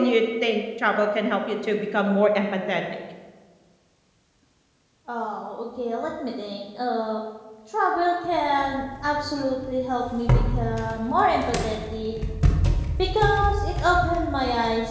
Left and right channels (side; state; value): both; identical; correlation 1.00